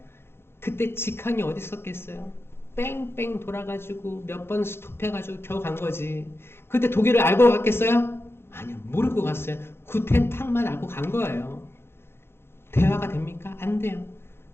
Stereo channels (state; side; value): late; right; 0.11 ms